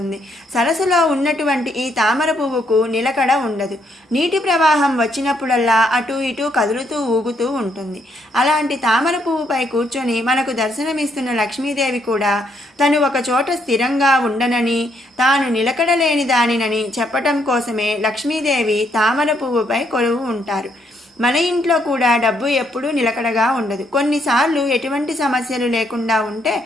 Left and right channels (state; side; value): normal; both; correlation 0.73